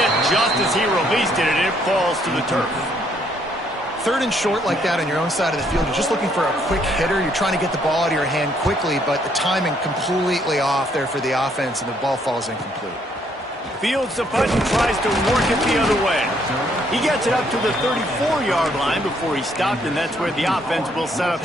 just as he released it, and it falls to the turf. Third and short like that on your own side of the field, you're just looking for a quick hitter. You're trying to get the ball out of your hand quickly, but the timing completely off there for the offense, and the ball falls incomplete. Fields the punt and tries to work it the other way. He gets it up to the 34-yard line before he stopped, and that's where the offense will set up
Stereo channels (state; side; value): normal; both; correlation 0.69